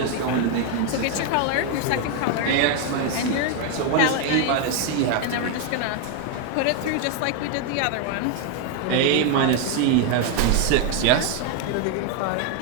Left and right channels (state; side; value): different; both; correlation 0.01